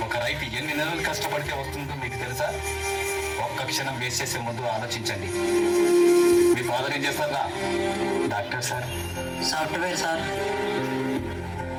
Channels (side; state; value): both; identical; correlation 1.00